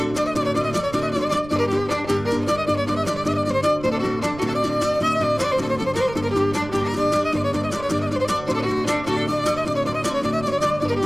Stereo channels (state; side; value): noise; right; rumble, 15 dB below the sound